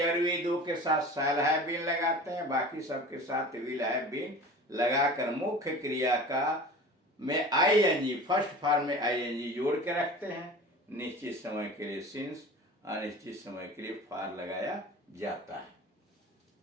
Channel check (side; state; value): both; normal; correlation 0.38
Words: और वी दो के साथ शैल हैव बीन लगाते हैं, बाकी सबके साथ विल हैव बीन लगाकर मुख्य क्रिया का में आईएनजी, फर्स्ट फॉर्म में आईएनजी जोड़ के रखते हैं। निश्चित समय के लिए सिंस, अनिश्चित समय के लिए फॉर लगाया जाता है।